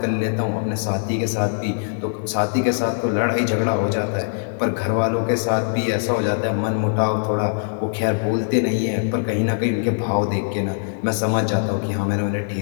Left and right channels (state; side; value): silent; right; 63 dB below the other